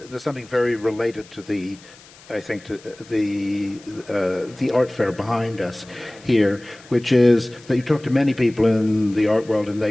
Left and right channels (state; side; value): noise; left; hiss, 23 dB below the sound